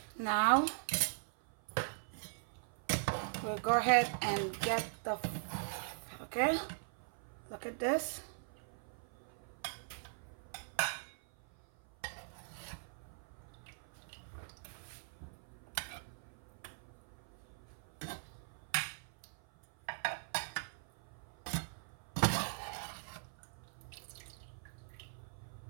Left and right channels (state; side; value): silent; left; 50 dB below the other